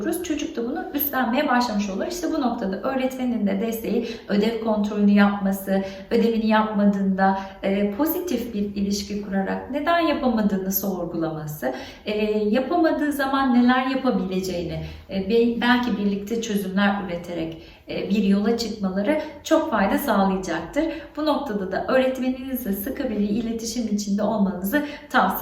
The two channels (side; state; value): both; identical; correlation 1.00